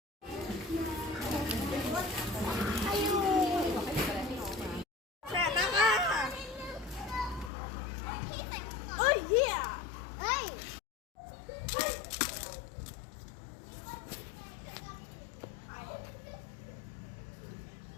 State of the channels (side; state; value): right; drops out; at 7.5 s